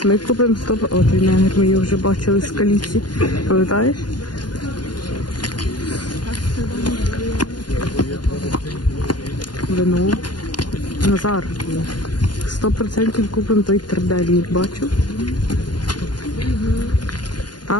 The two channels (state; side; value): late; right; 0.70 ms